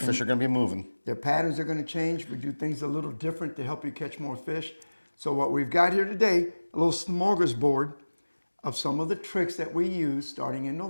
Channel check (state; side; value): inverted; both; correlation -1.00